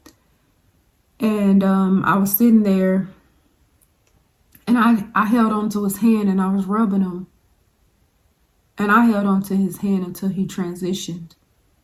And I was sitting there. And I held onto his hand and I was rubbing him. And I held onto his hand until he transitioned.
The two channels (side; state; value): both; identical; correlation 1.00